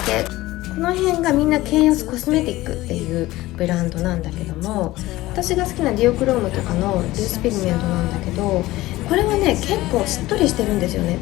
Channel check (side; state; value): right; quieter; 17.7 dB